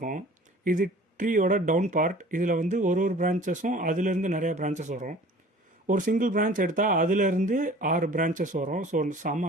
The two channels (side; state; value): both; normal; correlation 0.47